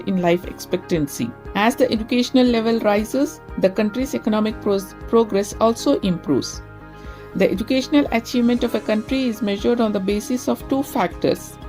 in life expectancy. As the educational level rises, the country's economic progress also improves. The educational achievement of a country is measured on the basis of two factors:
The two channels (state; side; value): identical; both; correlation 1.00